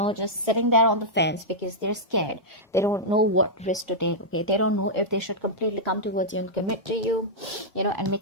sitting there on the fence because they're scared. They don't know what risk to take. Okay, they don't know if they should completely come towards you and commit to you, and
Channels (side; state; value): both; normal; correlation -0.08